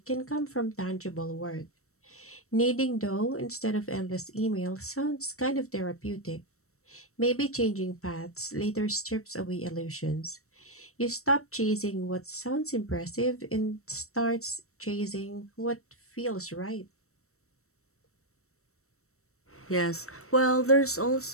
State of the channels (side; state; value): right; late; 0.63 ms